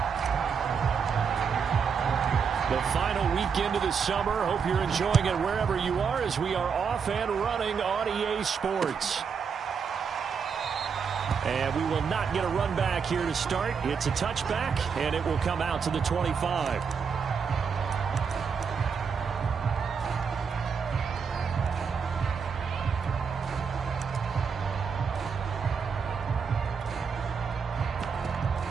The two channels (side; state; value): left; quieter; 6.2 dB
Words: The final weekend of the summer. Hope you're enjoying it wherever you are as we are off and running on EA Sports. And we will not get a run back here to start. It's a touchback, and it will come out to the 25.